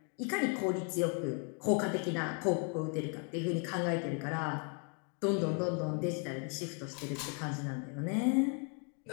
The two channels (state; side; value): quieter; right; 39.8 dB